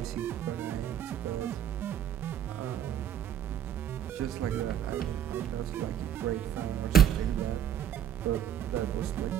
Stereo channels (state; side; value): quieter; left; 9.8 dB